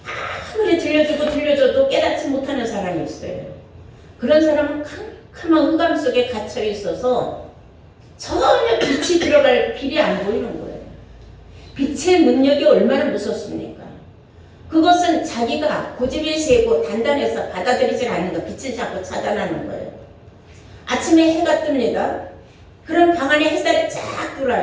아무리 들려줘도 깨닫지 못하는 사람이 있어요. 그런 사람은 캄캄한 흑암 속에 갇혀 있어서 전혀 빛이 들어갈 길이 안 보이는 거예요. 빛의 능력이 얼마나 무섭습니까? 그것은 자기가 고집이 세고 단단해서 받아들이지 않는 거, 빛을 자꾸 차단하는 거예요. 아침에 해가 뜹니다. 그럼 방 안에 햇살이 쫙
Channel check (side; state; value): both; identical; correlation 1.00